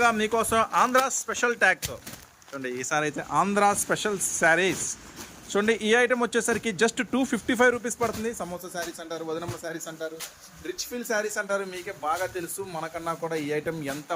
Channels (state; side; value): identical; both; correlation 1.00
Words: మీకోసం ఆంధ్ర స్పెషల్ ట్యాగ్తో చూడండి. ఈసారి అయితే ఆంధ్ర స్పెషల్ శారీస్ చూడండి. ఈ ఐటమ్ వచ్చేసరికి జస్ట్ 255 రూపీస్ పడుతుంది. సమోసా శారీస్ అంటారు, వదనమ్మ శారీస్ అంటారు, రిచ్ ఫీల్ శారీస్ అంటారు. మీకే బాగా తెలుసు, మనకన్నా కూడా ఈ ఐటమ్ ఎంత